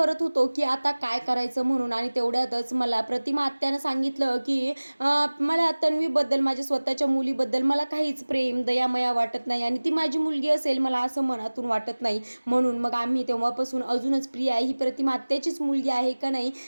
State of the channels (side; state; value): both; inverted; correlation -1.00